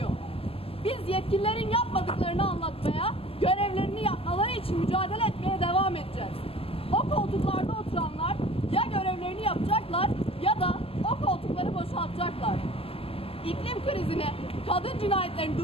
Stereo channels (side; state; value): right; late; 0.28 ms